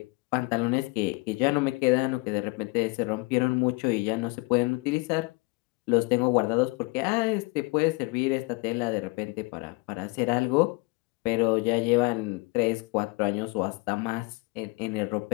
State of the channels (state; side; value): quieter; right; 26.5 dB